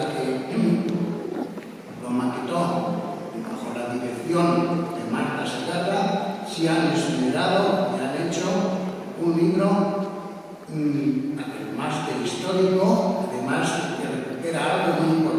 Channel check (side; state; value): both; identical; correlation 1.00